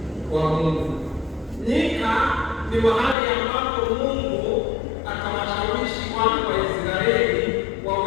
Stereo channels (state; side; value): drops out; right; at 3.2 s